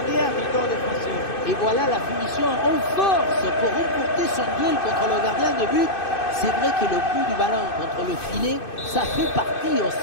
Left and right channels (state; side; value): late; right; 2.6 ms